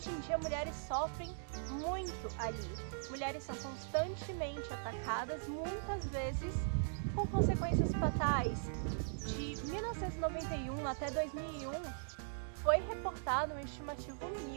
em dia mulheres sofrem muito ali. Mulheres são constantemente atacadas, muitas vezes com consequências fatais. De 1991 até 2001, foi reportado uma estimativa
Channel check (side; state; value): left; silent; digital silence